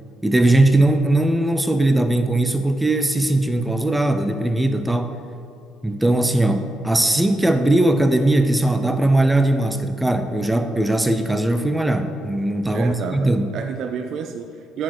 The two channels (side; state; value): both; normal; correlation 0.89